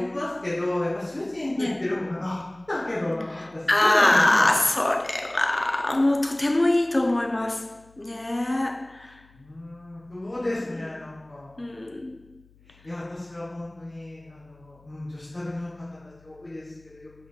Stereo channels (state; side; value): noise; left; hum, 29 dB below the sound